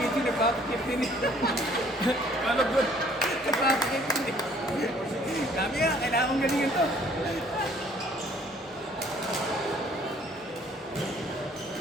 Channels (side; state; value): both; normal; correlation 0.59